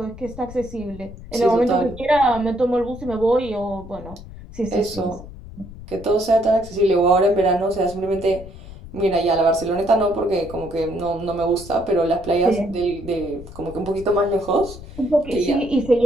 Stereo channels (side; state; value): left; noise; rumble, 15 dB below the sound